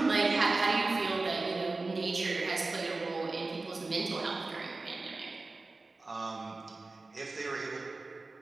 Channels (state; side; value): quieter; left; 3.4 dB